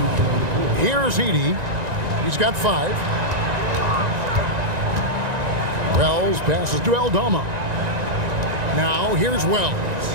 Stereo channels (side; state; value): left; late; 1.9 ms